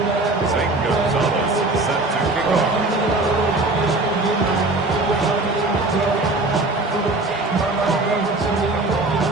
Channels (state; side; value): quieter; left; 3.0 dB